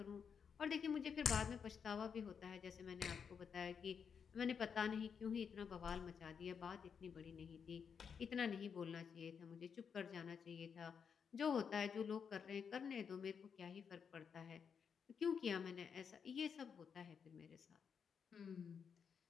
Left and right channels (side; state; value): right; quieter; 6.7 dB